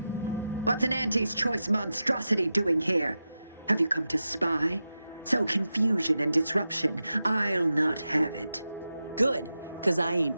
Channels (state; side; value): inverted; both; correlation -0.91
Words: What's an Auntie's choice monstrosity doing here? Have you come to spy? So confusion and disruption, I'll not have it. Good, because I